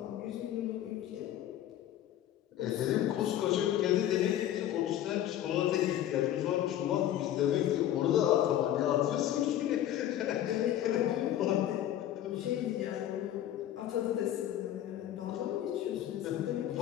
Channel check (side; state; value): right; quieter; 12.0 dB